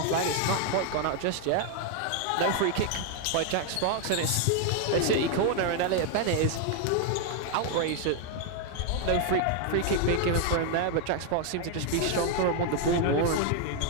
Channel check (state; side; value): different; both; correlation 0.01